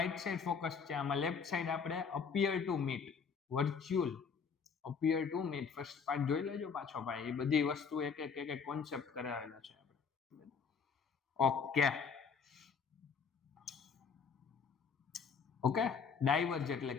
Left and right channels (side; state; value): right; quieter; 6.0 dB